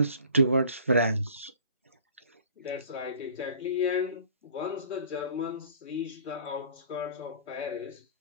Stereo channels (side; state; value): both; inverted; correlation -0.48